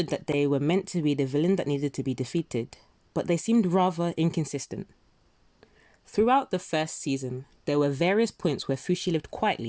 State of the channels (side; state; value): both; identical; correlation 1.00